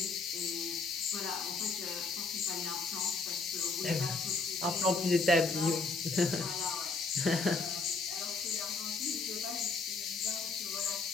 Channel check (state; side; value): quieter; right; 4.1 dB